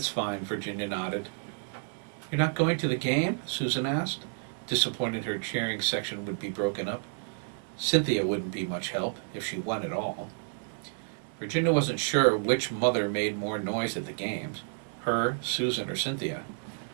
fine, Virginia nodded. You're not going to the game? Susan asked, disappointed her cheering section would be broken up. Cynthia wouldn't be much help, if she won at all. Virginia wasn't sure which mother made more noise at the games, her, Susan, or Cynthia.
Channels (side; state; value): left; silent; digital silence